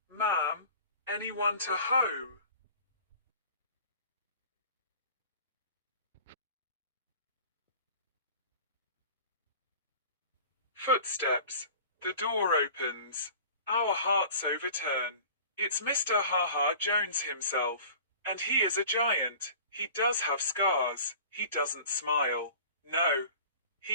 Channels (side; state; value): both; inverted; correlation -0.43